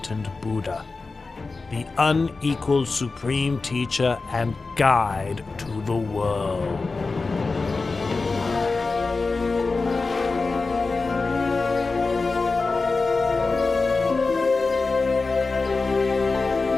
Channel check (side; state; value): right; quieter; 3.9 dB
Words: Buddha, the unequaled supreme teacher and guide to the world.